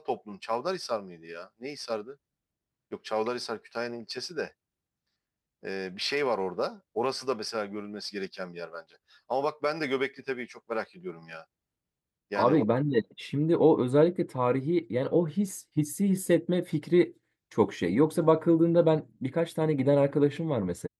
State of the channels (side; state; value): both; identical; correlation 1.00